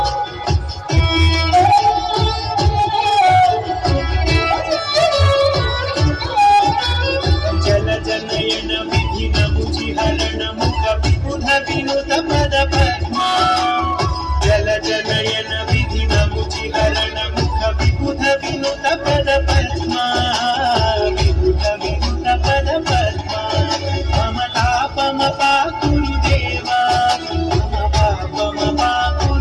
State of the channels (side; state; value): both; identical; correlation 1.00